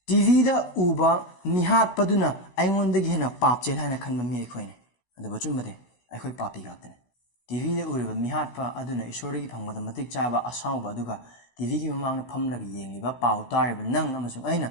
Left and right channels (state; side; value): late; right; 16 ms